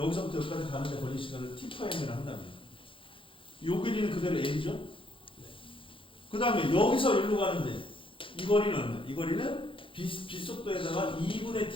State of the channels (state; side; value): late; right; 0.25 ms